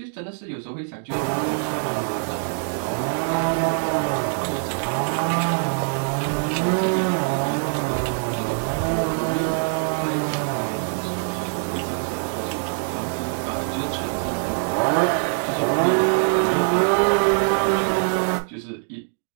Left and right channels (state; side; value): silent; left; 61 dB below the other